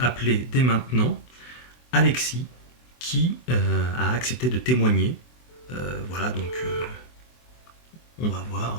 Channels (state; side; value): late; right; 24 ms